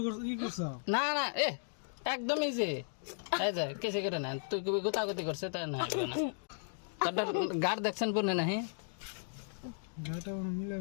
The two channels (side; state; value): right; silent; digital silence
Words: করছ কি করছ? না না এ একদম ইজি, এই যে কেসে করে না তুই কবি গোতাগতি করছে তাই না হইবে না। তোর গাড় দেখছেন পুনে নাহি গাটা মিলা